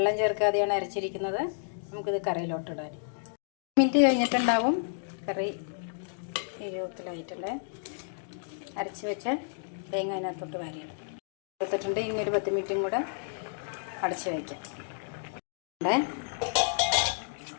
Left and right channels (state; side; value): silent; right; digital silence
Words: ചേർക്കാതെയാണ് അരച്ചിരിക്കുന്നത്. നമുക്കിത് കറിയിലോട്ട് ഇടാൻ. മിനിറ്റ് കഴിഞ്ഞിട്ടുണ്ടാവും കറി രൂപത്തിലായിട്ടുള്ള അരച്ച് വെച്ച തേങ്ങ അതിനകത്തോട്ട് വാരിയിടും. എടുത്തിട്ടുണ്ട്. ഇനി ഒരു 10 മിനിറ്റും കൂടെ അടച്ച് വയ്ക്കാം.